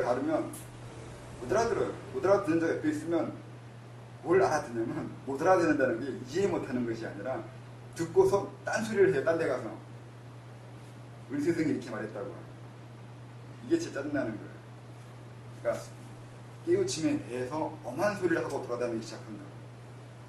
다르면 못 알아들어요. 못 알아듣는 자 옆에 있으면 뭘 알아듣냐면 못 알아듣는다는 게 이해 못하는 것이 아니라 듣고서 딴소리를 해요. 딴 데 가서 우리 스승이 이렇게 말했다고. 이게 진짜 짜증나는 거예요. 그러니까 깨우침에 대해서 엄한 소리를 하고 돌아다니기 시작한다.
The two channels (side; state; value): both; identical; correlation 1.00